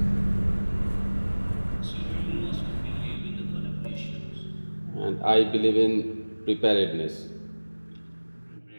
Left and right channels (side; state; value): both; inverted; correlation -1.00